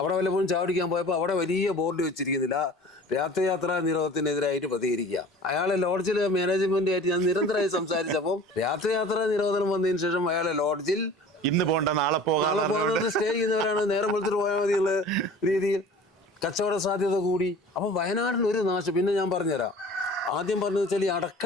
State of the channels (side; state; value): both; normal; correlation 0.43